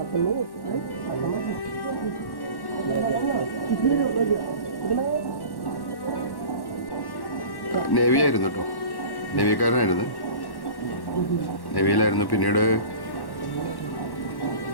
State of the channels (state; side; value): late; right; 1.1 ms